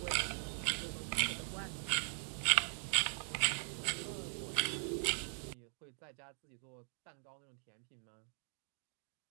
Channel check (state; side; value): silent; left; 51 dB below the other